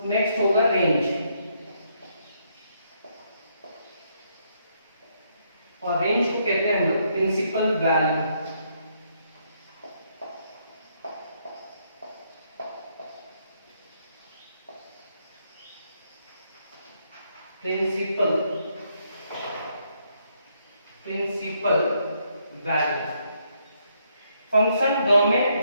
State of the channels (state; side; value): inverted; both; correlation -0.74